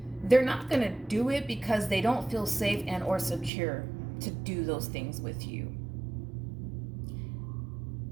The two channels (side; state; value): left; drops out; at 3.5 s